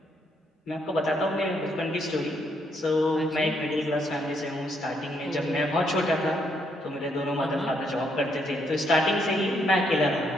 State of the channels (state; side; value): normal; both; correlation 0.74